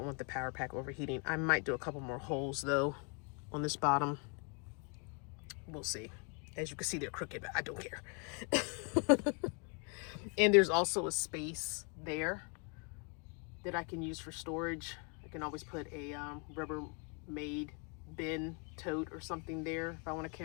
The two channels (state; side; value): quieter; right; 36.2 dB